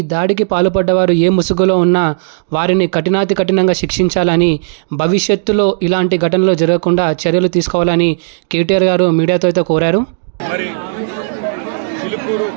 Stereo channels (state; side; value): silent; left; digital silence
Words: దాడికి పాల్పడ్డవారు ఏ ముసుగులో ఉన్నా వారిని కఠినంగా శిక్షించాలని, భవిష్యత్తులో ఇలాంటి ఘటనలు జరగకుండా చర్యలు తీసుకోవాలని కేటీఆర్ గారు మీడియాతో అయితే కోరారు. మరి చిలుకూరు